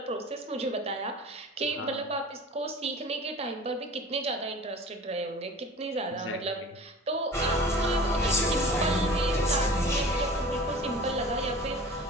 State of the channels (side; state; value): both; normal; correlation 0.41